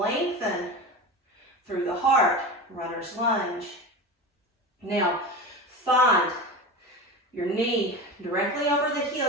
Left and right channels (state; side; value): normal; both; correlation 0.27